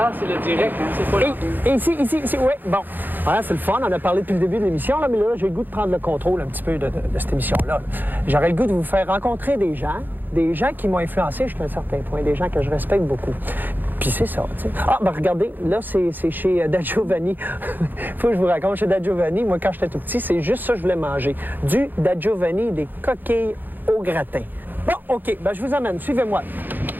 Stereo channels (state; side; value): late; left; 0.089 ms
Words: c'est le direct, hein? C'est pas là. Ici, oui, bon. Voilà, c'est le fun, on a parlé depuis le début de l'émission, là, mais là, j'ai le goût de prendre le contrôle un petit peu de cette émission-là. J'aurais le goût de vous faire rencontrer des gens qui m'ont influencé jusqu'à un certain point, des gens que je respecte beaucoup. Puis c'est ça, tu sais. Ah, ben regardez, là, c'est chez Da Giovanni. Faut que je vous raconte, chez Da Giovanni, moi, quand j'étais tout petit, c'est juste ça que je voulais manger. Du Da Giovanni, des coquilles au gratin. Bon, OK, ben je vous amène, suivez-moi.